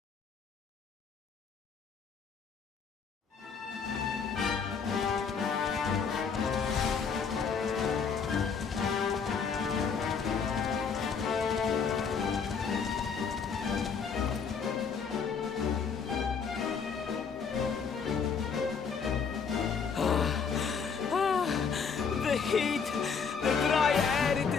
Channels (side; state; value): right; quieter; 6.0 dB